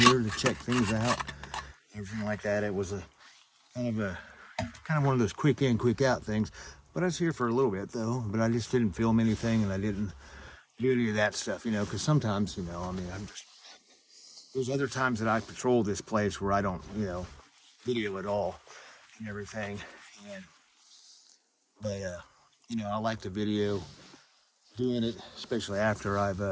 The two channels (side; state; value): both; identical; correlation 1.00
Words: to check things out, everything like that. It was a kind of one of those quick in, quick out things. But I was here for a little bit though, but I just didn't film anything and I didn't do any of that stuff, you know, because sometimes, you know, I mean, there's other times that I patrol this place where I don't, you know, video at all and everything. But you know, I like the video doing it, especially after I've